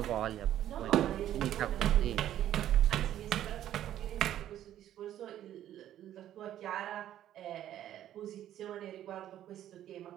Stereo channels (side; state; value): left; quieter; 11.9 dB